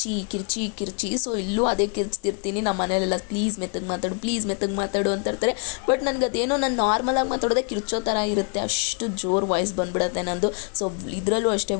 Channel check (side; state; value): right; quieter; 37.3 dB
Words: ಕಿರ್ಚಿ ಕಿರ್ಚಿ. ಸೊ ಇಲ್ಲೂ ಅದೇ ಕಿರ್ಚ್ತಿರ್ತೀನಿ. ನಮ್ಮ ಮನೇಲೆಲ್ಲ ಪ್ಲೀಸ್ ಮೆತ್ತಗೆ ಮಾತಾಡು, ಪ್ಲೀಸ್ ಮೆತ್ತಗೆ ಮಾತಾಡು ಅಂತ ಇರ್ತಾರೆ. ಬಟ್ ನನಗೆ ಅದೇನೋ ನಾನು ನಾರ್ಮಲಾಗಿ ಮಾತಾಡೋದೇ ಕಿರ್ಚೋ ಥರ ಇರುತ್ತೆ, ಅಷ್ಟು ಜೋರು ವಾಯ್ಸ್ ಬಂದ್ಬಿಡುತ್ತೆ ನಂದು. ಸೊ ಇದರಲ್ಲೂ ಅಷ್ಟೇ